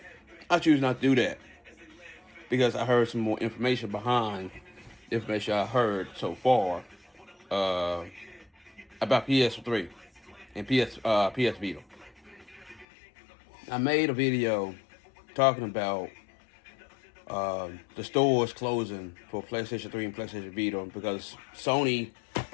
I choose not to do that, because I heard some more information behind the information I heard so far about PS3 and PS Vita. I made a video talking about the stores closing for PlayStation 3 and PlayStation Vita because Sony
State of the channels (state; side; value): drops out; right; at 12.9 s